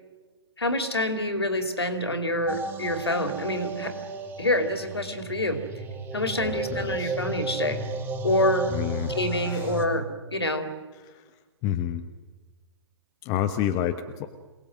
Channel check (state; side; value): normal; both; correlation -0.14